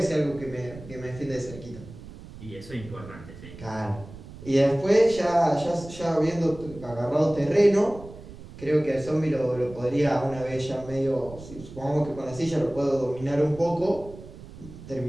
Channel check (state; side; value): noise; right; rumble, 16 dB below the sound